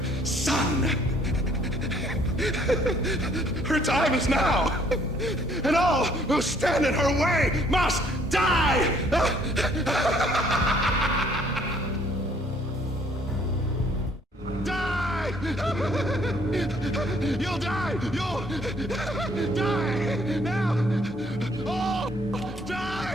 son. Her time is now, and all who stand in her way must die! Die! You'll die! You'll die! Now! Oh!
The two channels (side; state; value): both; normal; correlation 0.62